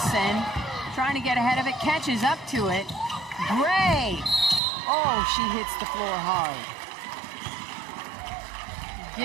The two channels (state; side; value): drops out; left; at 4.6 s